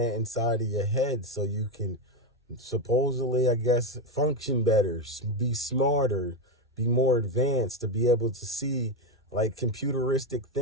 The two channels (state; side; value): normal; both; correlation 0.10